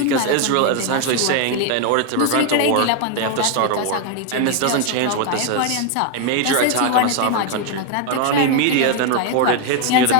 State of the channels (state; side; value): different; both; correlation 0.01